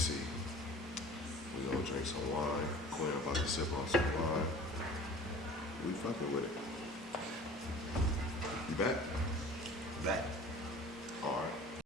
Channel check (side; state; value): both; normal; correlation 0.44